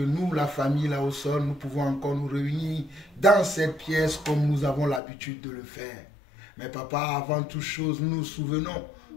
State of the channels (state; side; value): drops out; right; at 5.0 s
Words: nous, la famille là au sol, nous pouvons encore nous réunir dans cette pièce comme nous avons l'habitude de le faire. Mais papa, avant toute chose, nous nous souvenons